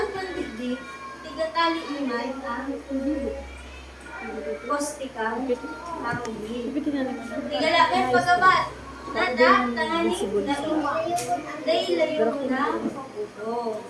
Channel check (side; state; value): both; identical; correlation 1.00